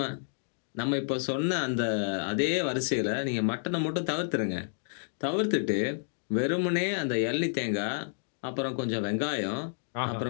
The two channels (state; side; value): silent; right; digital silence